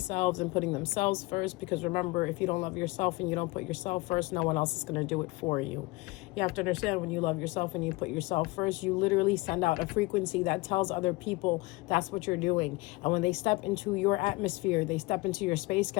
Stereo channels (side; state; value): right; quieter; 23.0 dB